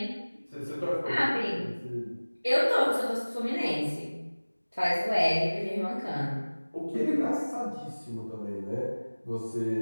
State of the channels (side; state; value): both; inverted; correlation -1.00